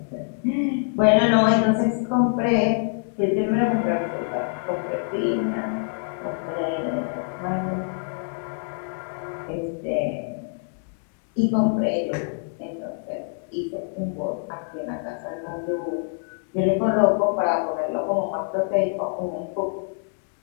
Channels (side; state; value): right; silent; digital silence